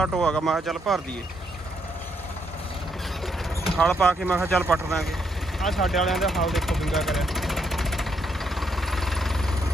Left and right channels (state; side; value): normal; both; correlation 0.75